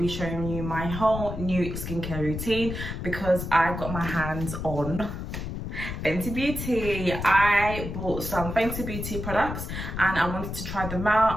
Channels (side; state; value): left; noise; rumble, 6 dB below the sound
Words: showing you my whole new skincare routine because I got my hands on Fenty Beauty. I bought some Fenty Beauty products and I wanted to try them